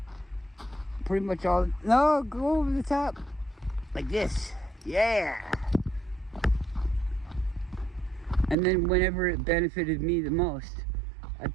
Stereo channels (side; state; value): left; drops out; at 8.6 s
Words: Pretty much all. No, go over the top. Like this. Yeah. And then whenever it benefited me the most,